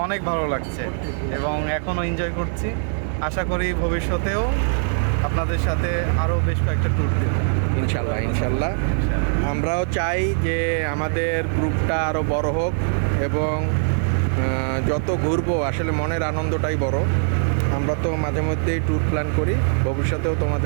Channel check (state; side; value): silent; left; 64 dB below the other